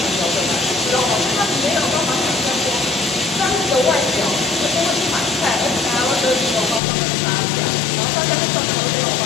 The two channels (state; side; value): drops out; right; at 6.8 s